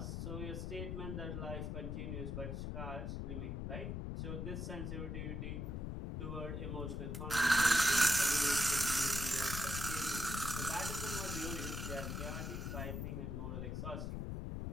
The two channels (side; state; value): left; noise; rumble, 3 dB below the sound